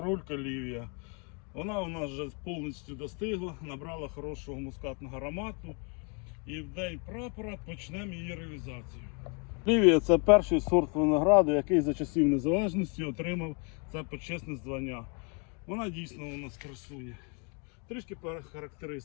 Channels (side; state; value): right; quieter; 35.7 dB